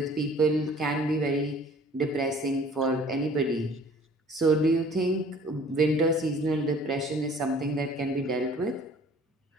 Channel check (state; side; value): normal; both; correlation 0.51